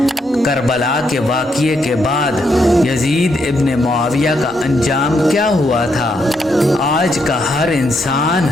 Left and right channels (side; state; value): both; normal; correlation 0.77